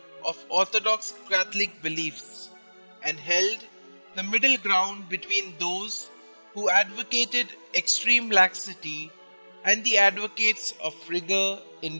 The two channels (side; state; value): both; inverted; correlation -1.00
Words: of Orthodox Catholic beliefs and held the middle ground between those who advocated extreme laxity and the advocates of rigor in